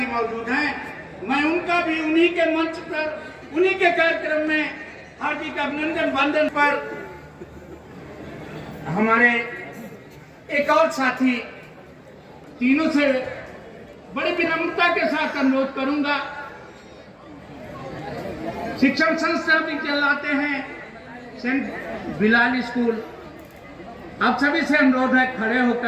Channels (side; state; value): both; identical; correlation 1.00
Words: मौजूद हैं। मैं उनका भी उन्हीं के मंच पर उन्हीं के कार्यक्रम में हार्दिक अभिनंदन वंदन पर हमारे एक और साथी तीनों से बड़ी विनम्रता के साथ अनुरोध करूंगा। शिक्षण संस्था भी चलाते हैं सेंट बिलाल स्कूल। आप सभी से अनुरोध है खड़े